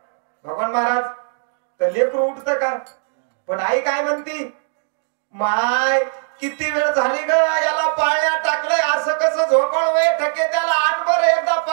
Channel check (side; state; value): left; silent; digital silence